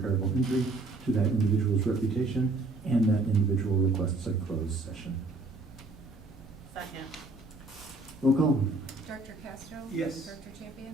injury to that individual's reputation, and that individual requests a closed session. Second. Roll call. Director Castro? Yes. Director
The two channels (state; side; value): quieter; left; 3.1 dB